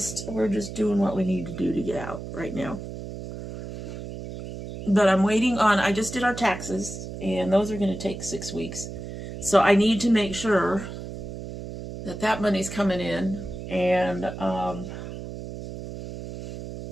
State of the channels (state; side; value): noise; right; hum, 9 dB below the sound